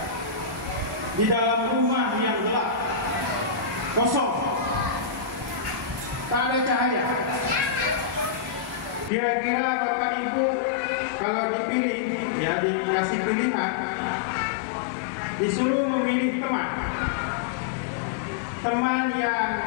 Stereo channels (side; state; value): right; drops out; at 9.1 s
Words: di dalam rumah yang gelap, kosong, tak ada cahaya, kira-kira Bapak Ibu kalau dipilih, ya dikasih pilihan, disuruh memilih teman yang,